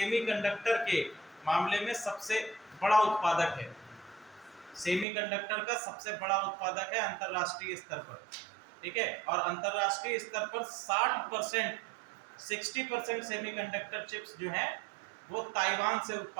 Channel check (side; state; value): left; drops out; at 5.1 s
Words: के मामले में सबसे बड़ा उत्पादक है। सेमीकंडक्टर का सबसे बड़ा उत्पादक है अंतरराष्ट्रीय स्तर पर। ठीक है, और अंतरराष्ट्रीय स्तर पर 60% सेमीकंडक्टर चिप्स जो हैं वो ताइवान से